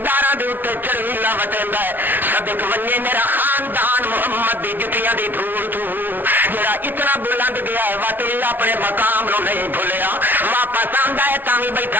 دے اوتے چڑھیلا وٹیندا ہے صدق ونجے میرا خاندان محمد دی جتیاں دی دھول تو جڑا اتنا بلند گیا ہے واقعی اپنے مقام نو نہیں بھولیا واپس آندا ہے تاں وی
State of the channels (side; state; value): left; late; 0.089 ms